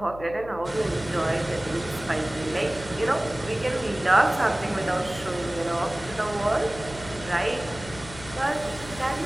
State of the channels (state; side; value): noise; left; hum, 15 dB below the sound